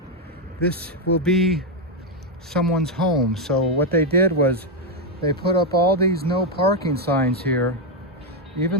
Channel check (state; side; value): normal; both; correlation 0.02